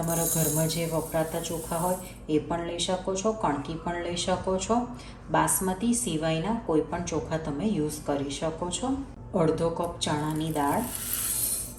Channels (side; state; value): both; identical; correlation 1.00